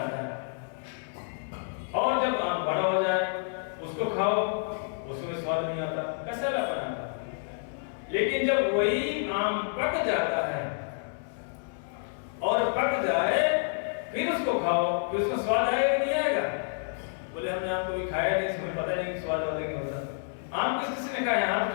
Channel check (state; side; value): silent; right; 58 dB below the other